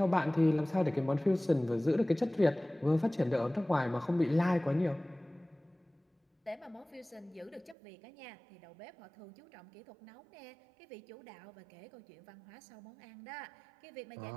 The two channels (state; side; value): drops out; left; at 7.8 s